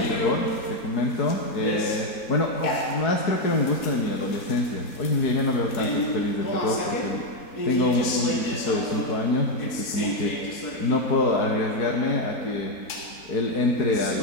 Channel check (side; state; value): right; late; 4.6 ms